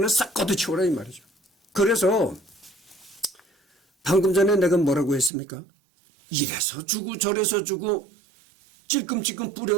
싹 걷어치워라 이 말이죠. 그래서 방금 전에 내가 뭐라고 했습니까? 이래서 주고 저래서 주고 찔끔찔끔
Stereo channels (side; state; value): left; drops out; at 5.3 s